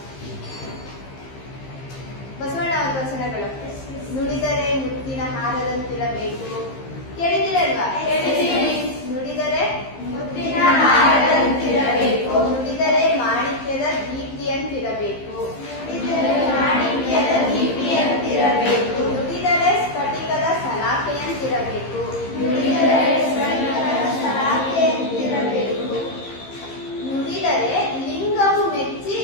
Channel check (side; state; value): right; late; 15 ms